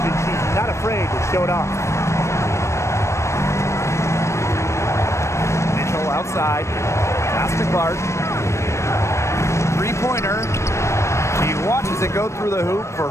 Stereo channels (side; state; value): right; late; 0.13 ms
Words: she's not afraid to show it off. Mitchell outside. Pass to Clark. 3-pointer. She watches it go through the hoop for